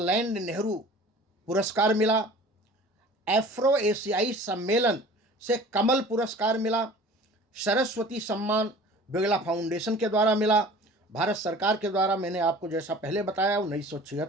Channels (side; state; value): both; normal; correlation 0.44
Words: नेहरू पुरस्कार मिला, एफ्रो एशियाई सम्मेलन से कमल पुरस्कार मिला, सरस्वती सम्मान बिरला फाउंडेशन के द्वारा मिला, भारत सरकार के द्वारा मैंने आपको जैसा पहले बताया